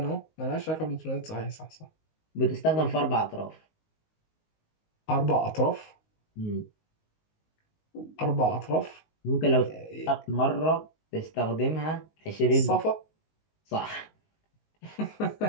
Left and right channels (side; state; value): right; late; 19 ms